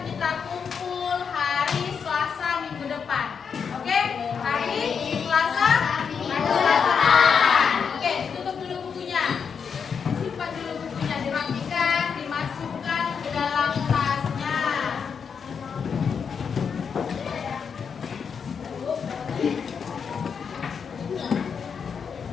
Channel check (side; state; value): right; quieter; 6.5 dB